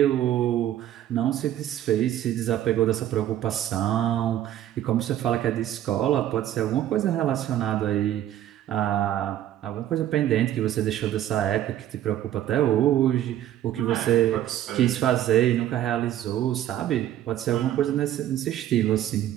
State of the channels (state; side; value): quieter; left; 12.1 dB